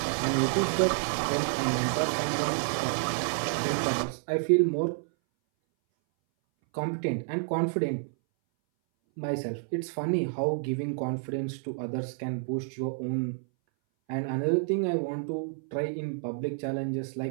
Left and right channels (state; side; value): silent; left; 58 dB below the other